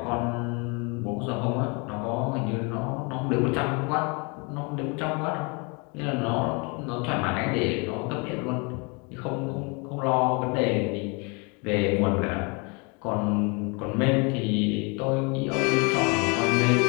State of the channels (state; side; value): quieter; right; 31.4 dB